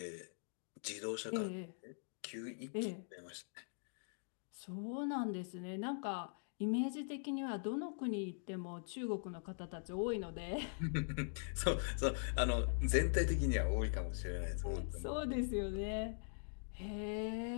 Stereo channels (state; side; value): silent; right; digital silence